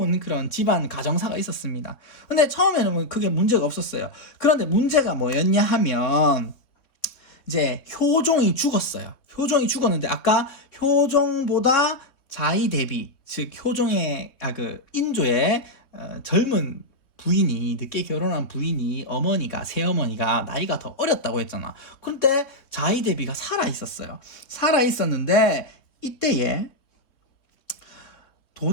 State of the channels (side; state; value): right; late; 3.5 ms